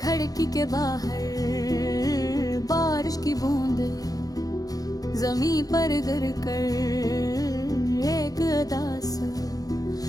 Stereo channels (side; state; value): right; late; 0.18 ms